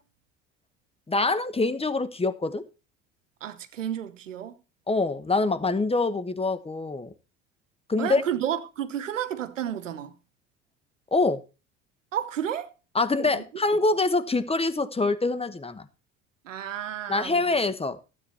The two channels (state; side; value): normal; both; correlation 0.38